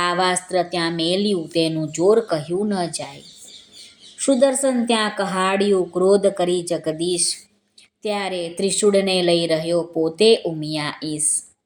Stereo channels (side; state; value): both; identical; correlation 1.00